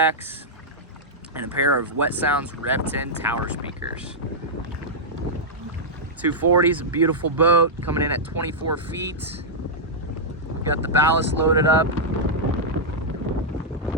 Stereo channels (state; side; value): normal; both; correlation -0.08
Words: and a pair of Wet Sounds Rev 10 tower speakers. 240 is a beautiful boat coming in at 24 feet. We've got the ballast loaded up